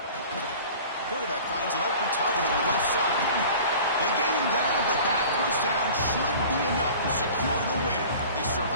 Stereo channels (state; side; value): inverted; both; correlation -0.43